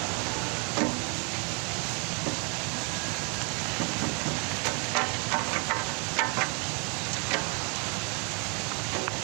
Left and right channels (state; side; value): quieter; left; 35.1 dB